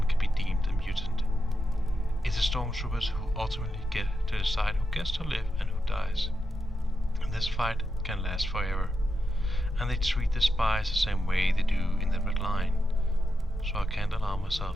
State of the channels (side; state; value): both; normal; correlation 0.87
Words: can be deemed a mutant. It's the stormtroopers who ultimately get to decide who gets to live and who dies. And this fight can last forever. And they treat the spies the same way they do in the Red Line. So I can't allow